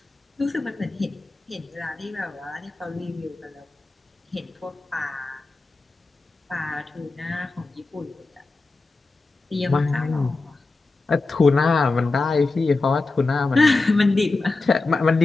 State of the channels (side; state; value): right; quieter; 3.5 dB